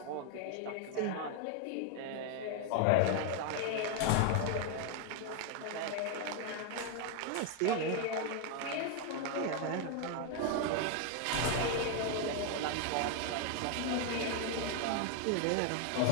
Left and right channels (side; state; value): both; different; correlation 0.01